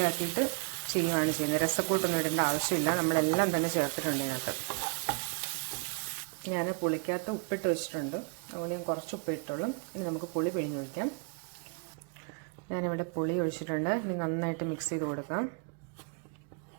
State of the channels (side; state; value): left; quieter; 36.5 dB